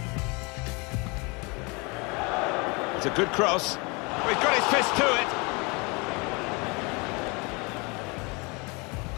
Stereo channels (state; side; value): quieter; right; 28.9 dB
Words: It's a good cross. He's got his fist to it.